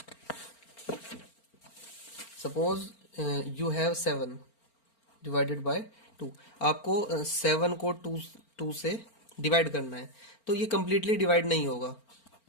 Suppose you have 7 divided by 2। आपको 7 को 2 से डिवाइड करना है, तो ये कंप्लीटली डिवाइड नहीं होगा।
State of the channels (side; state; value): right; late; 4.4 ms